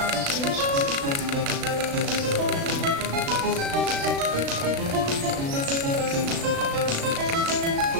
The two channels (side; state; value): left; late; 36 ms